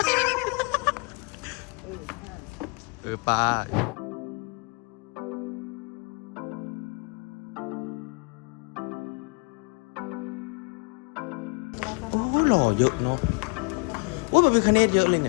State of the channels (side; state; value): right; quieter; 31.9 dB